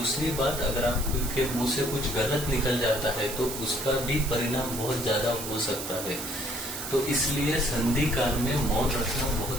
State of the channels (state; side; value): noise; right; hiss, 7 dB below the sound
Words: बात, अगर आपके मुंह से कुछ गलत निकल जाता है तो उसका भी परिणाम बहुत ज्यादा हो सकता है। तो इसलिए संधि काल में मौन रखना